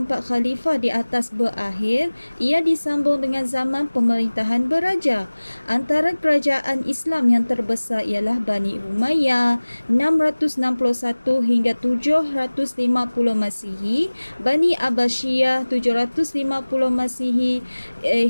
khalifah di atas berakhir, ia disambung dengan zaman pemerintahan beraja. Antara kerajaan Islam yang terbesar ialah Bani Umayyah 661 hingga 750 Masihi, Bani Abbasiyah 750 Masihi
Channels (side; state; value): both; inverted; correlation -1.00